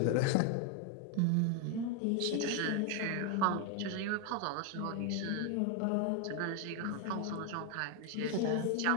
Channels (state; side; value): different; both; correlation 0.01